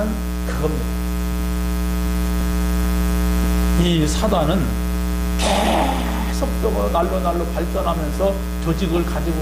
그겁니다. 이 사단은 계속적으로 날로 발전하면서 조직을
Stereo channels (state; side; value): identical; both; correlation 1.00